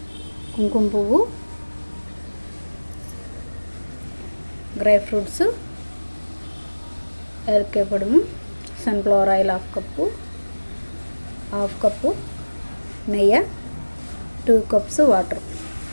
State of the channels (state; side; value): inverted; both; correlation -1.00